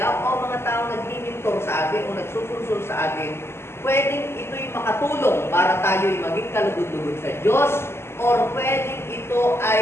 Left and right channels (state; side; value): late; right; 0.12 ms